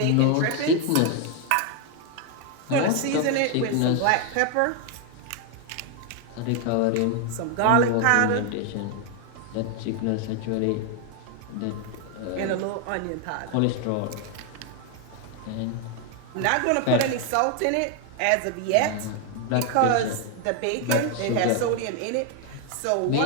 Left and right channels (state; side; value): different; both; correlation 0.01